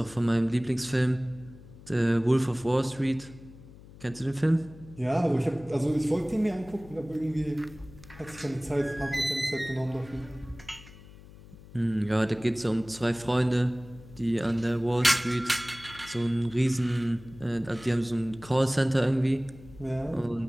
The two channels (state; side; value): noise; left; hum, 20 dB below the sound